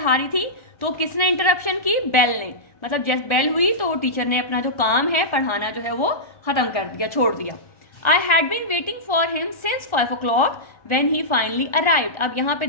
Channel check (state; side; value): late; right; 1.3 ms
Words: रही थी तो किसने इंटरप्शन की, बेल ने। मतलब जैसे बेल हुई तो टीचर ने अपना जो काम है पढ़ाना जो है वो खत्म कर दिया, छोड़ दिया। I had been waiting for him since 5 o'clock when he finally arrived. अब यहाँ पे